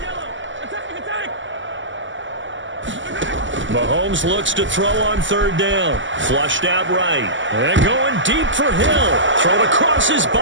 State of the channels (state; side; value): late; left; 0.55 ms